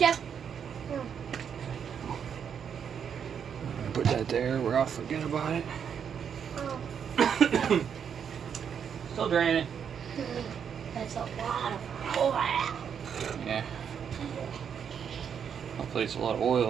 Put that there where I'll forget about it. Oh. Still draining. That's a lot of oil. Yeah. Hopefully it's a lot of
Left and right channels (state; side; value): quieter; left; 7.6 dB